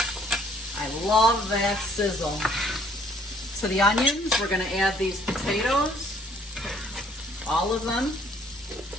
I love that sizzle. To the onions, we're gonna add these potatoes, all of them.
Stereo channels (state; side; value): normal; both; correlation 0.61